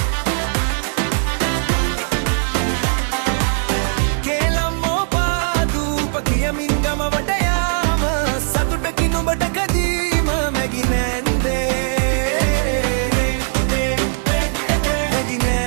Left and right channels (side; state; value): left; silent; digital silence